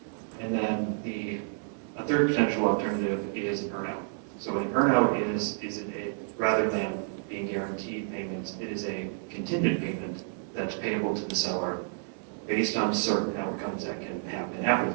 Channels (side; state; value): left; silent; digital silence